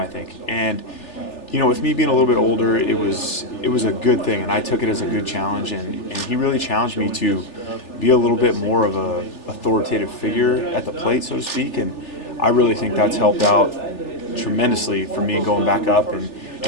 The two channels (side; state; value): right; late; 3.4 ms